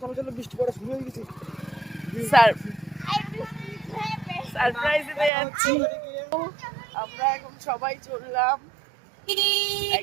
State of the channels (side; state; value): left; drops out; at 5.3 s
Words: সারপ্রাইজ দিতে যাচ্ছি। আমরা এখন সবাই চললাম,